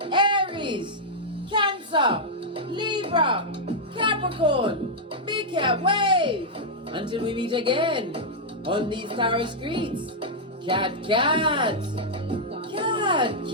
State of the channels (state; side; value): normal; both; correlation -0.06